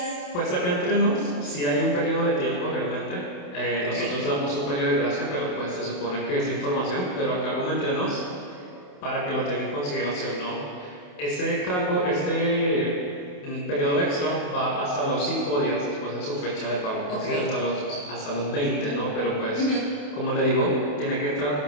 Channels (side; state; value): right; late; 28 ms